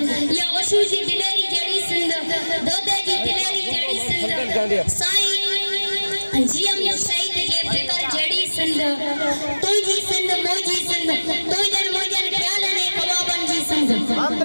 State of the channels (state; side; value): inverted; both; correlation -1.00